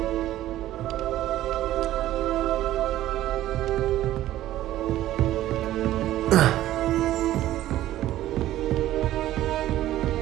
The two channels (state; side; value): quieter; left; 14.1 dB